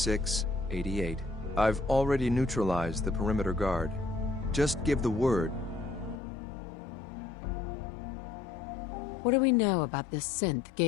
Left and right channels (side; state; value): right; drops out; at 6.2 s